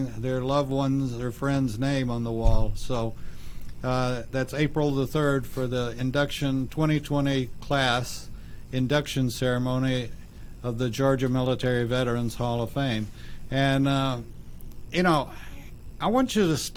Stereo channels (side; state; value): both; identical; correlation 1.00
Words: their loved ones or friends' name on the wall. So that's April the 3rd for the induction 2020 class induction ceremony of the Georgia Military Veterans Hall of Fame. And I want you to